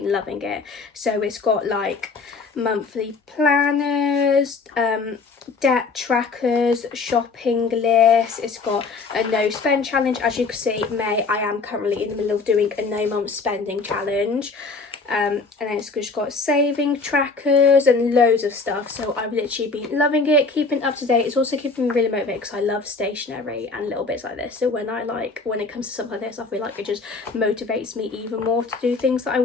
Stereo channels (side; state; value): right; quieter; 4.2 dB